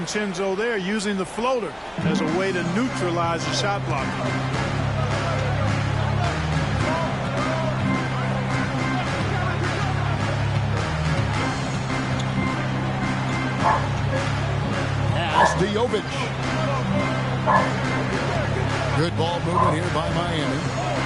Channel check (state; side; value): identical; both; correlation 1.00